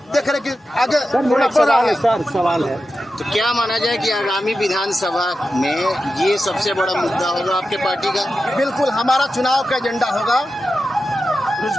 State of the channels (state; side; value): normal; both; correlation 0.91